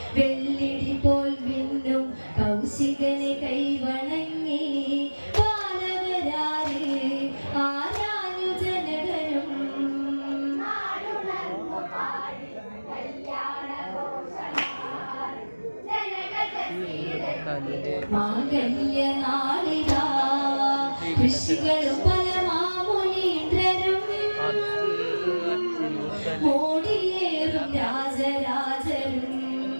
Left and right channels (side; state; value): both; inverted; correlation -1.00